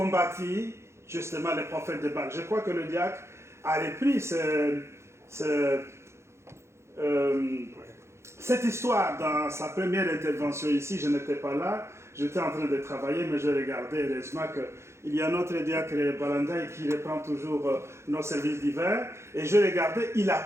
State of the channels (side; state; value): left; late; 0.13 ms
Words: justement les prophètes de Baal. Je crois que le diacre a repris cette histoire dans sa première intervention ici. Je n'étais pas là, j'étais en train de travailler, mais je regardais heureusement qu'il y a notre diacre Balandaï qui reprend toujours nos services d'hiver. Et je regardais, il a